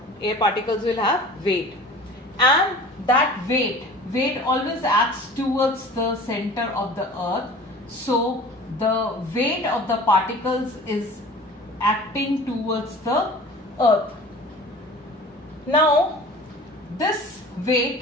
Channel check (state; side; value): normal; both; correlation 0.42